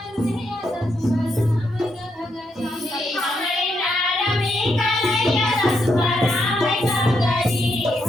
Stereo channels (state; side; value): normal; both; correlation 0.79